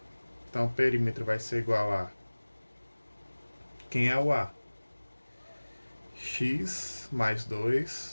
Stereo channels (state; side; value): inverted; both; correlation -1.00